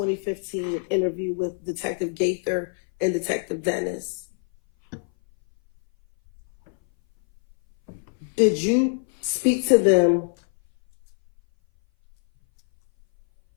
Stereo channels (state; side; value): silent; right; 59 dB below the other